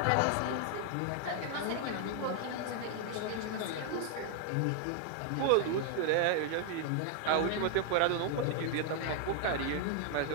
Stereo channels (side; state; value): both; different; correlation 0.00